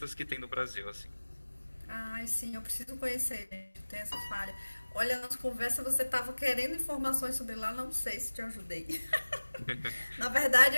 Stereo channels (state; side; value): inverted; both; correlation -1.00